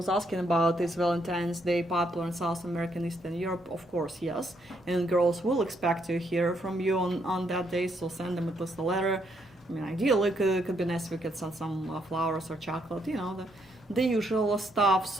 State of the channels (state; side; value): normal; both; correlation 0.74